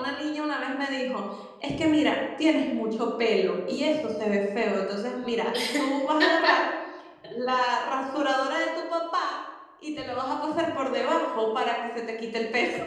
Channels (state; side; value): identical; both; correlation 1.00